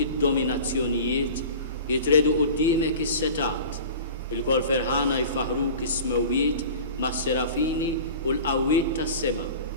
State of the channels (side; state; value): both; inverted; correlation -0.39